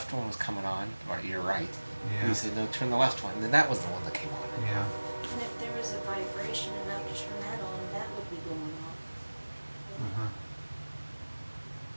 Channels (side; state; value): both; inverted; correlation -1.00